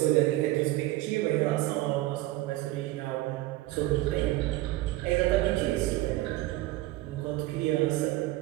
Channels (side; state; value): left; quieter; 17.8 dB